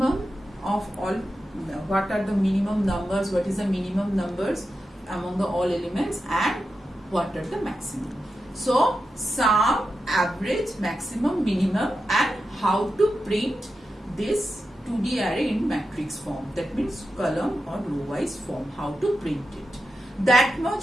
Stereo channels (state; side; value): normal; both; correlation 0.90